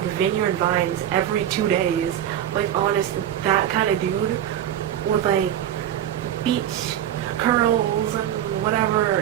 Vineyard Vines every 2 days. Like, honest, that kind of dude with like beach curls and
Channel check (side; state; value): left; quieter; 11.0 dB